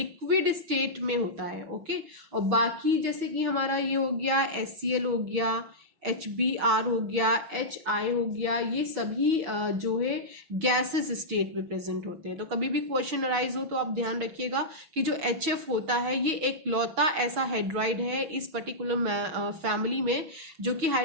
स्टेट में होता है। ओके, और बाकी जैसे कि हमारा ये हो गया HCl हो गया, HBr हो गया, HI हो गया, ये सभी जो है गैसेस स्टेट में प्रेजेंट होते हैं। तो कभी भी क्वेश्चन अराइज हो तो आप ध्यान रखिएगा कि जो HF होता है ये एक लौता ऐसा हाइड्राइड है इस पर्टिकुलर फैमिली में जो कि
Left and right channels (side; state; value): left; late; 6.2 ms